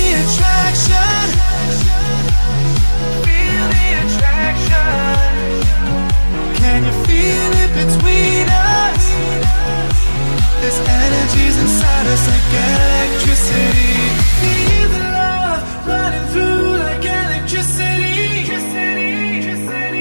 attraction? Feel the attraction. Can you feel it between us? This energy's inside us like electricity. Feel the love running through like electricity.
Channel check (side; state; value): both; inverted; correlation -1.00